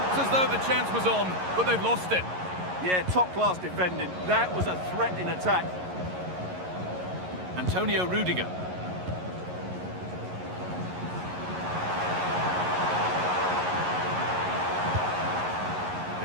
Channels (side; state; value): left; late; 11 ms